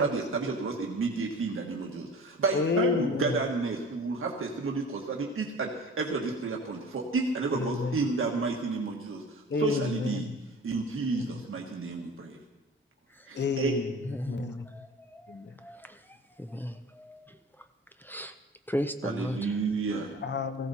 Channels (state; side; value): normal; both; correlation 0.41